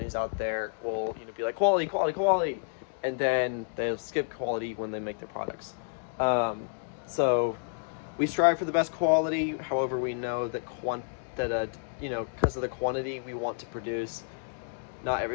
out there will be like quality, and then they'll skip quality when they make their products. So we strive for the best quality. However, we know that because of the quantity we want to produce, not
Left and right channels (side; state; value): right; silent; digital silence